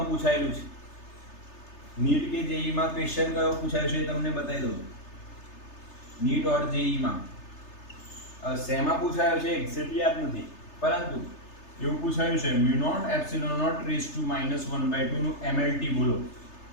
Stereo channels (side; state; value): right; late; 3.3 ms